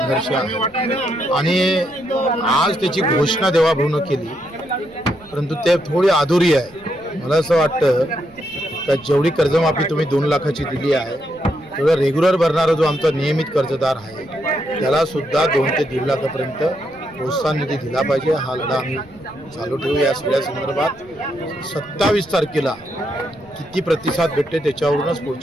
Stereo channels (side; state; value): right; noise; rumble, 26 dB below the sound